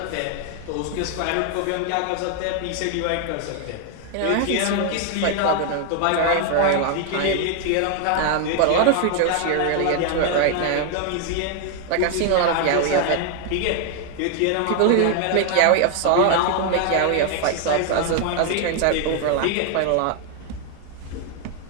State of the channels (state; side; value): different; both; correlation 0.00